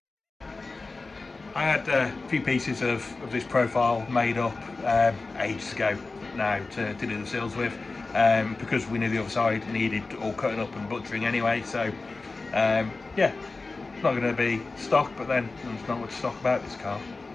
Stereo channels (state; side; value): quieter; right; 3.7 dB